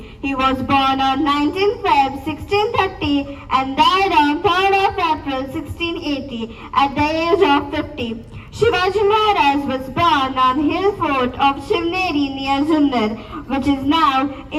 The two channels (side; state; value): both; identical; correlation 1.00